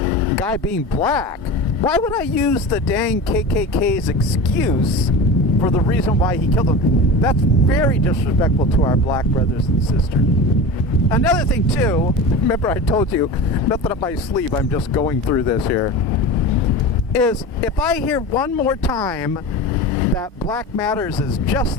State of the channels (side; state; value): both; normal; correlation 0.30